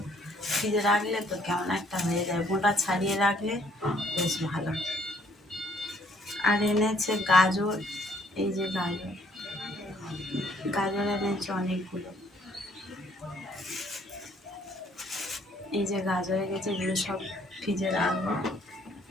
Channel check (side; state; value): both; normal; correlation 0.64